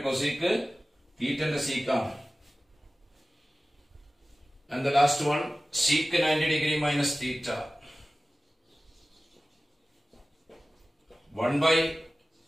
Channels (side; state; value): both; normal; correlation 0.96